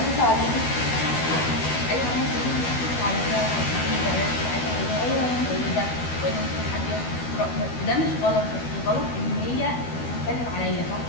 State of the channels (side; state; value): right; late; 12 ms